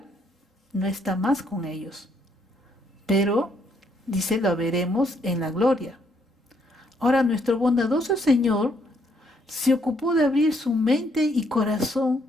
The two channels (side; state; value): both; normal; correlation 0.71